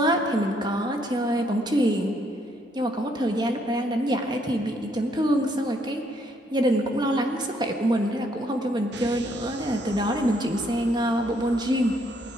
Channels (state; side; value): normal; both; correlation 0.70